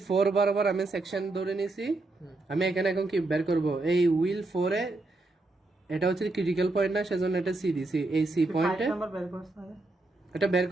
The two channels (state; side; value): quieter; left; 3.0 dB